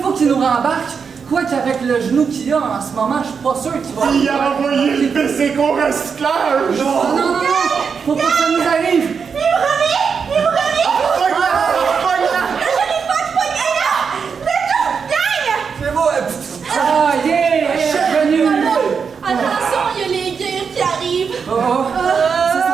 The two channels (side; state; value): left; quieter; 6.0 dB